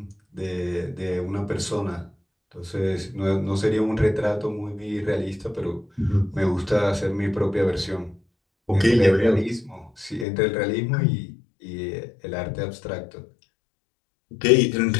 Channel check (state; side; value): drops out; right; at 10.2 s